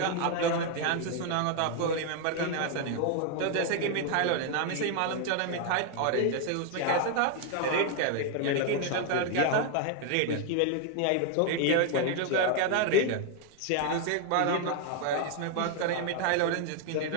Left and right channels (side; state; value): both; different; correlation 0.00